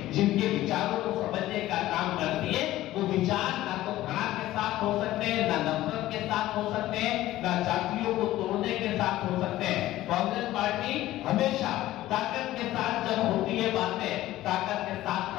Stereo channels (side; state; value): right; quieter; 15.3 dB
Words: जिनके विचारों को समझने का काम करती है, वो विचार ना तो घृणा के साथ हो सकते हैं, ना नफरत के साथ हो सकते हैं, ना जातियों को तोड़ने के साथ हो सकते हैं. कांग्रेस पार्टी हमेशा ताकत के साथ जब होती है बातें, ताकत के साथ